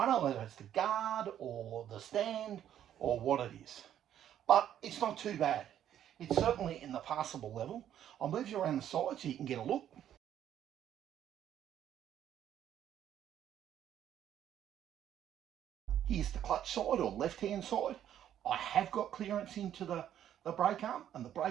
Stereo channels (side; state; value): left; quieter; 10.6 dB